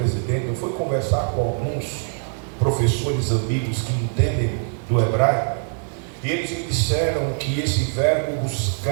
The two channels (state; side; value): silent; left; 58 dB below the other